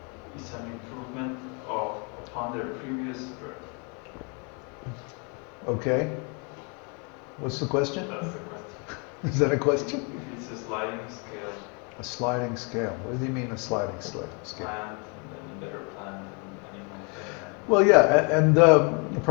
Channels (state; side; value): quieter; right; 34.6 dB